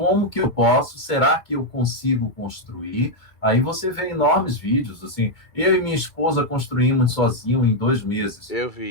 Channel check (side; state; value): right; late; 2.3 ms